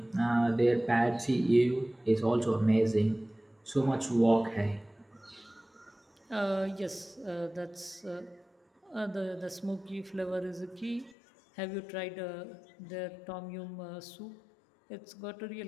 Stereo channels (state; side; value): drops out; right; at 11.2 s